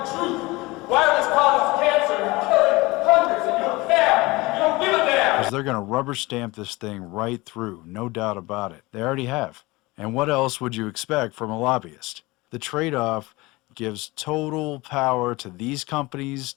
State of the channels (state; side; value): quieter; right; 22.1 dB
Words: the truth. Wireless causes cancer and killing hundreds, and you don't care. You don't give a damn. Because they're going to rubber stamp this thing right through, no doubt about it. They already have. And what else would you expect from a lobbyist? The trade-off gives total power to these companies,